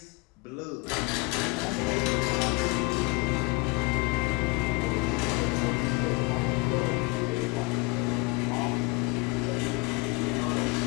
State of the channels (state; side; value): quieter; right; 25.4 dB